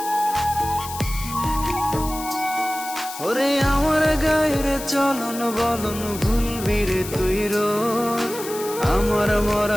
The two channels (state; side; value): noise; left; hiss, 11 dB below the sound